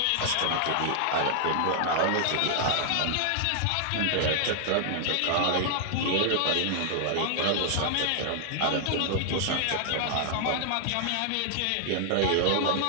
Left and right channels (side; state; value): both; different; correlation -0.01